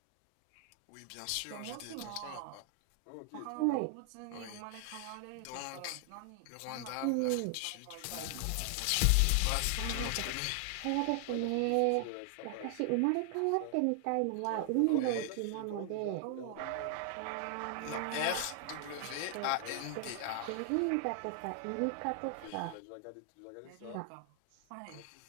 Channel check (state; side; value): different; both; correlation 0.00